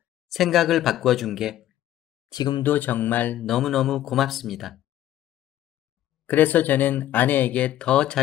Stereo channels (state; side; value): quieter; right; 13.0 dB